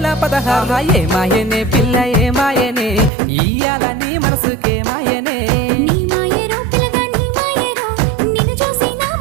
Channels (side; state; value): left; drops out; at 3.1 s